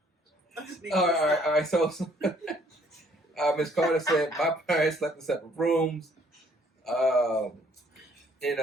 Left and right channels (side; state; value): both; normal; correlation 0.63